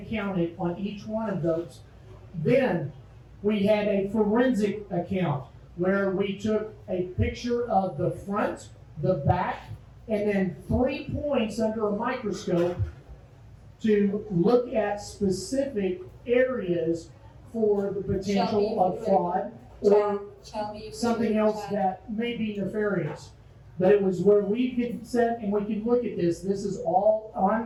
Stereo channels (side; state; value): both; identical; correlation 1.00